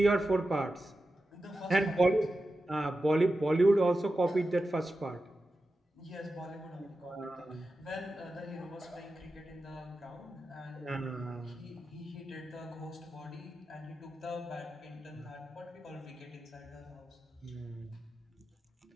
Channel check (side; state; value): both; normal; correlation 0.92